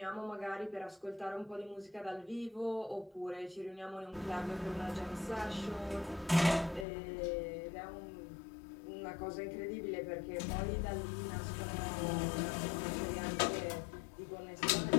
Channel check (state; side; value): drops out; right; at 6.9 s